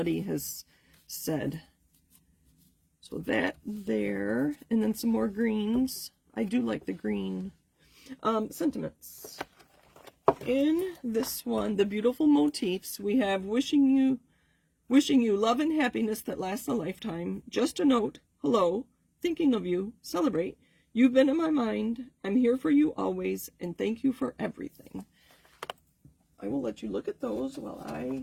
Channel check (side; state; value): both; identical; correlation 1.00